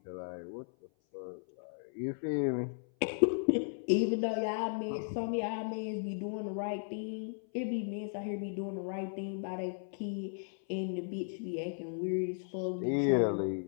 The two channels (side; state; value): right; silent; 54 dB below the other